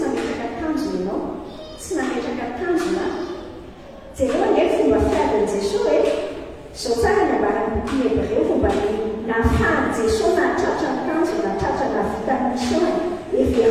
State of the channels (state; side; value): identical; both; correlation 1.00